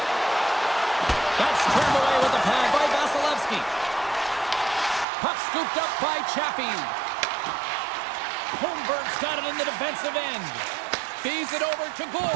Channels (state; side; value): drops out; left; at 5.1 s